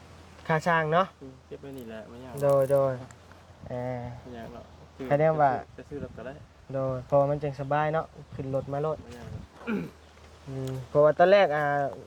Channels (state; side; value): identical; both; correlation 1.00